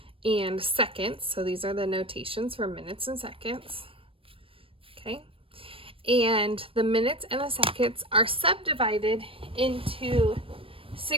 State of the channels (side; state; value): left; late; 0.26 ms